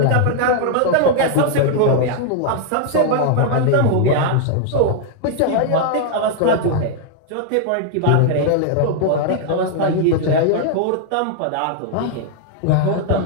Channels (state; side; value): different; both; correlation 0.00